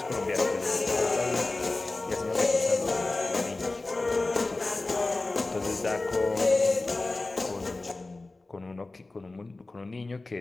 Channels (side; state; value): right; quieter; 3.2 dB